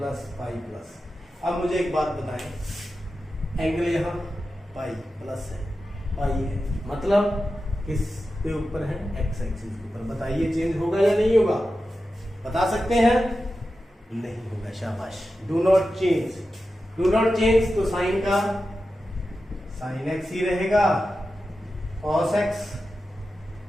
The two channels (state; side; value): normal; both; correlation 0.92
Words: pi plus. अब मुझे एक बात बताएं, एंगल यहां पाई प्लस है, पाई है, मतलब किसके ऊपर है, एक्स एक्सिस के ऊपर। बताइए चेंज होगा या नहीं होगा, बता सकते हैं, नहीं होगा, शाबाश। Do not change, do not change, तो साइन का साइन एक्स ही रहेगा, cos x,